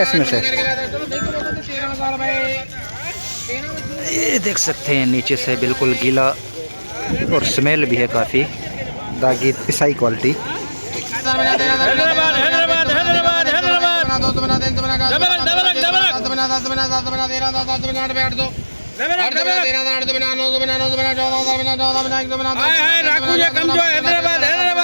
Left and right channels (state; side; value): inverted; both; correlation -1.00